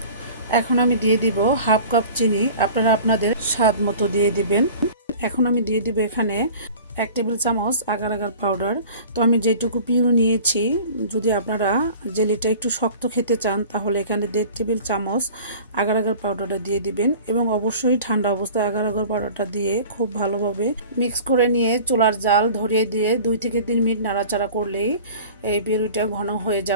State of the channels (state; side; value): inverted; both; correlation -0.42